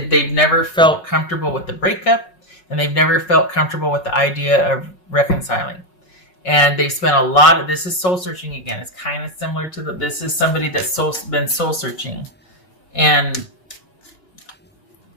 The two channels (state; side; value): late; right; 5.5 ms